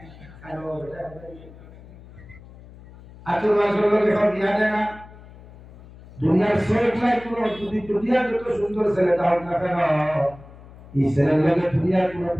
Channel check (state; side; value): noise; left; hum, 20 dB below the sound